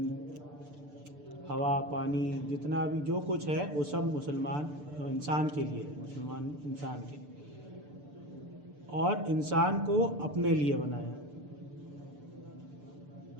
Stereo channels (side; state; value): left; late; 6.8 ms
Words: ہوا، پانی، جتنا بھی جو کچھ ہے وہ سب مسلمان انسان کے لیے، مسلمان انسان کے لیے، اور انسان کو اپنے لیے بنایا۔